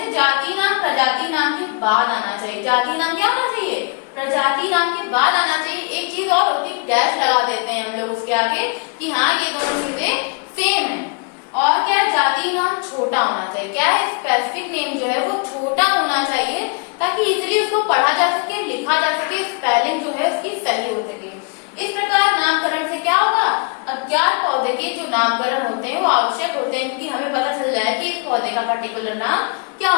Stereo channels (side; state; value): right; quieter; 34.4 dB